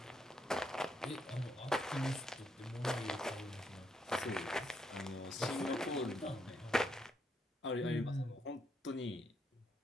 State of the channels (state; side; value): normal; both; correlation 0.77